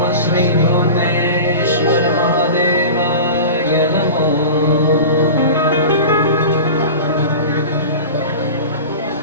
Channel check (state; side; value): inverted; both; correlation -0.33